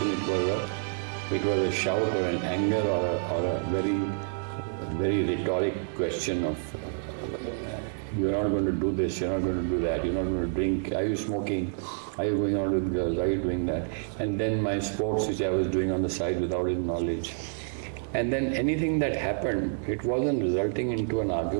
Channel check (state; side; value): silent; left; 59 dB below the other